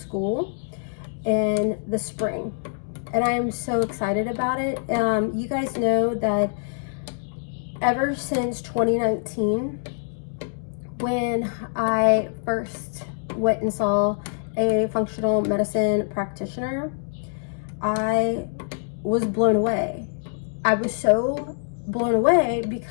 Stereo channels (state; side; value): silent; right; digital silence